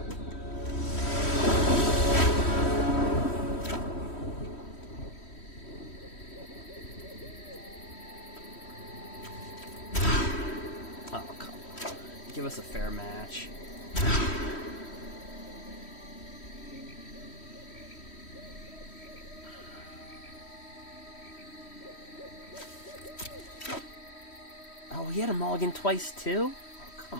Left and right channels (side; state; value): right; late; 3.1 ms